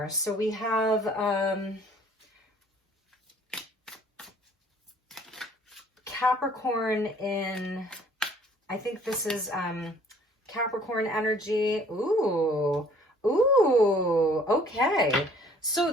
So we have Capricorn in, I think this is Capricorn energy. Ooh, okay.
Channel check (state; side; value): normal; both; correlation 0.56